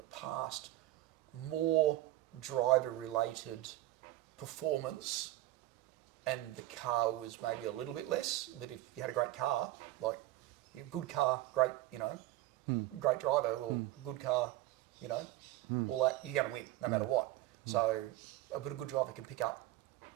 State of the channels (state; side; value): quieter; left; 16.2 dB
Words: past more driver-related performance and the car was maybe a little bit less. But if you had a great car, like good car, great, you know, great driver or good car, you know, all that, you're going to win no matter what. So, but a good driver can pick up,